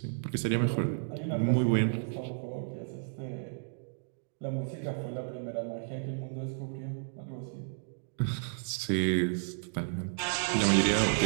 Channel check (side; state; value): left; silent; digital silence